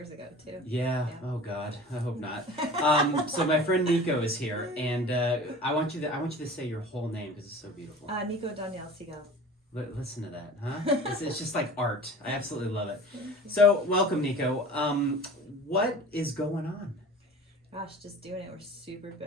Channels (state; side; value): normal; both; correlation 0.40